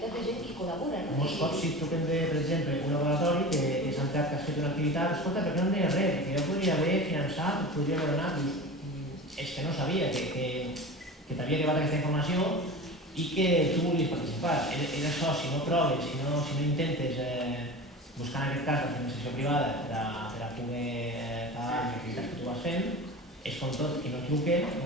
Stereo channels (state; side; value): normal; both; correlation 0.32